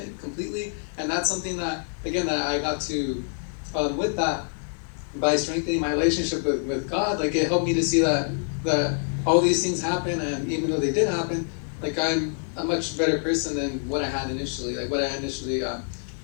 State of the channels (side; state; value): right; silent; 61 dB below the other